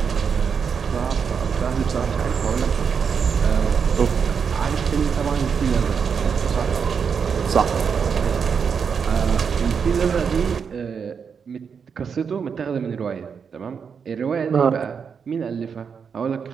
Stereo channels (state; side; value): quieter; left; 6.4 dB